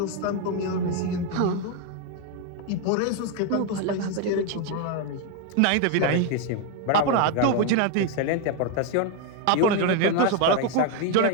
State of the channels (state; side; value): different; both; correlation 0.01